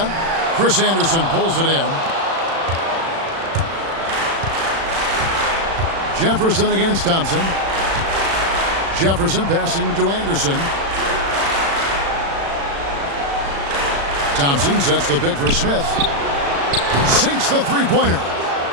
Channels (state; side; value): late; left; 36 ms